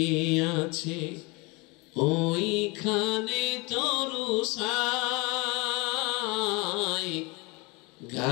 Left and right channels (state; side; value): quieter; right; 27.2 dB